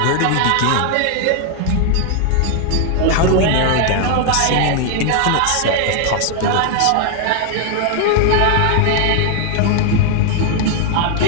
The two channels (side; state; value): both; different; correlation 0.00